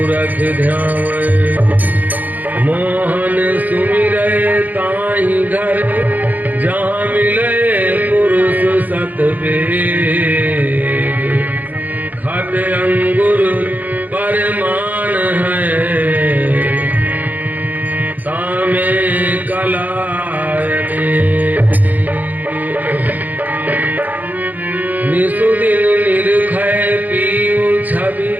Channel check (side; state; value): left; late; 0.082 ms